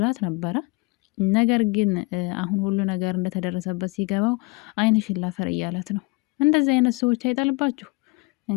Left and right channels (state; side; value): quieter; right; 25.5 dB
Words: ነበረ። ነገር ግን አሁን ሁሉ ነገር እንደተደረሰበት ሲገባው ዓይንሽን ላፈር እያለት ነው። እንደዚህ አይነት ሰዎች አይጣልባችሁ